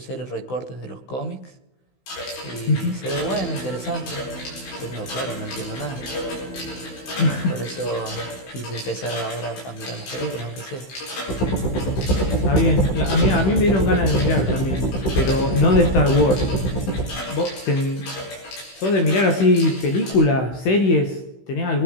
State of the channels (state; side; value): late; right; 16 ms